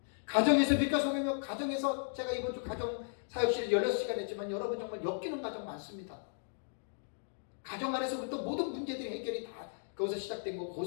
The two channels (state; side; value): silent; right; digital silence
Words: 가정에서 빛과 소금이며 가정에서 제가 이번 주 가정 사역실을 16시간 했지만 여러분 정말 엮이는 가정 많습니다. 가정 안에서부터 모든 문제들이 해결이 다 거기서 시작된 거고